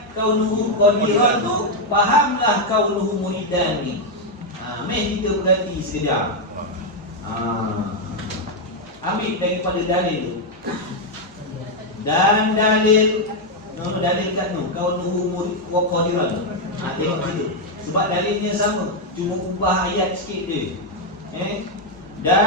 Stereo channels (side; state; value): both; normal; correlation 0.01